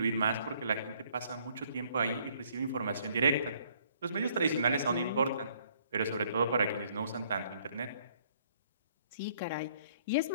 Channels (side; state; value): both; inverted; correlation -0.63